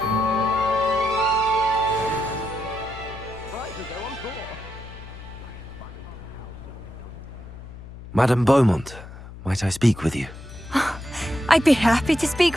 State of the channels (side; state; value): left; noise; hum, 14 dB below the sound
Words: Madame Beaumont, might I speak with you? I'd be happy to speak